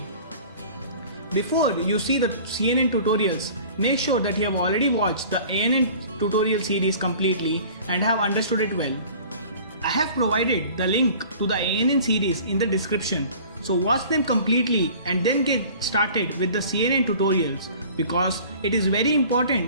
Before you see the CNN tutorials, make sure that you have already watched the ANN tutorial series completely and have understood it well. I have provided the link to the ANN series in the description, so watch them completely and then get started with the CNN tutorials, because it is very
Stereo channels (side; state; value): both; inverted; correlation -0.45